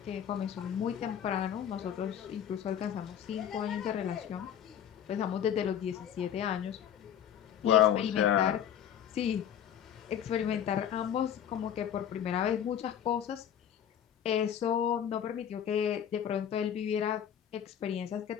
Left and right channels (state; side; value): quieter; right; 9.4 dB